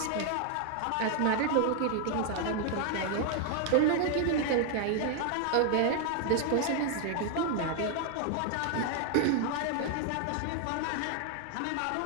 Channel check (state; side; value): different; both; correlation 0.00